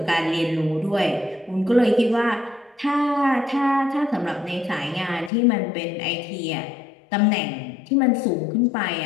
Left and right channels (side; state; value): right; drops out; at 5.3 s